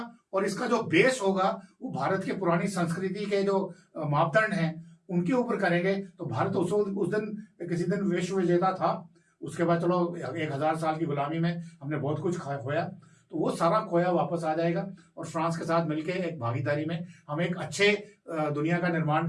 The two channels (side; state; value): both; identical; correlation 1.00